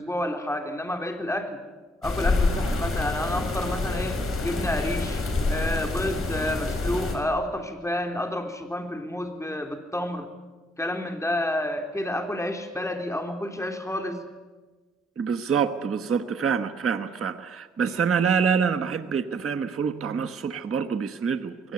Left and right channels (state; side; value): normal; both; correlation 0.67